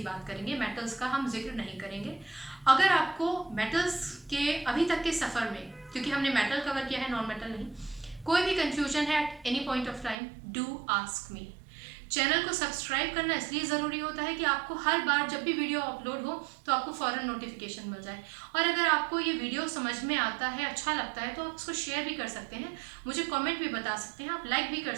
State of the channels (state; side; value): drops out; left; at 10.2 s